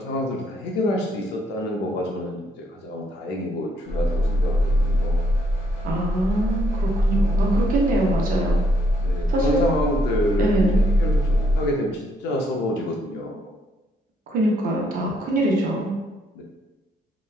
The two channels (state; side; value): normal; both; correlation 0.72